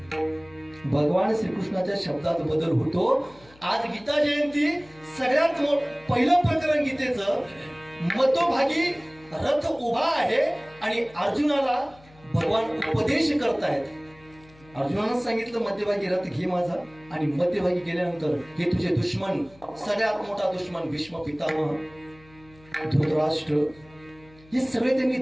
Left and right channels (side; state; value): left; noise; hum, 26 dB below the sound